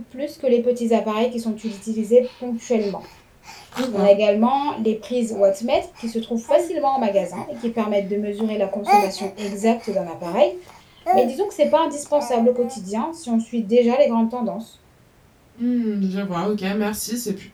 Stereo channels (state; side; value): identical; both; correlation 1.00